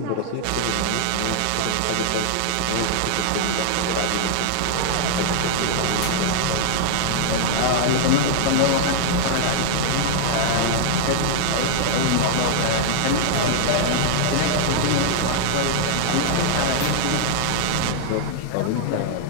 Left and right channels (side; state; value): both; different; correlation 0.00